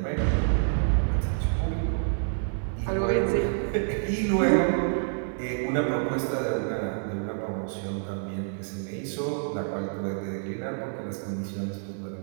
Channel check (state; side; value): silent; left; digital silence